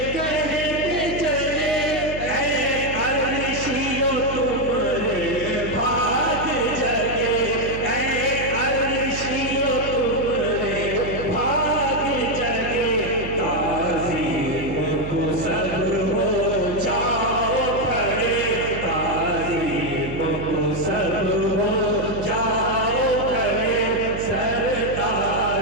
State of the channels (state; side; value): noise; right; hum, 9 dB below the sound